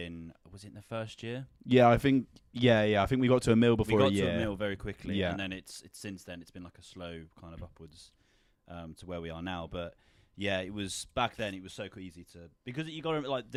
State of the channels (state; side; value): identical; both; correlation 1.00